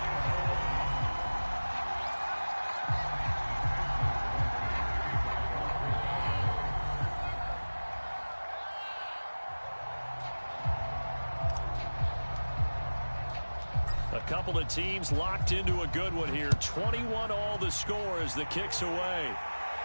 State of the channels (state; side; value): inverted; both; correlation -1.00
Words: A couple of teams locked into a good one here. 21-all the score as the kick's away.